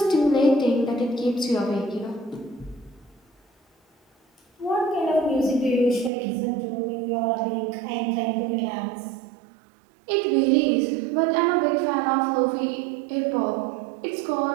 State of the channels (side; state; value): left; drops out; at 6.1 s